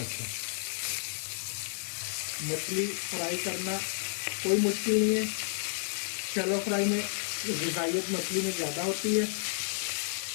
मछली फ्राई करना कोई मुश्किल नहीं है। शैलो फ्राई में ग़िज़ाइयत मछली में ज़्यादा होती है।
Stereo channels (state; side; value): silent; right; digital silence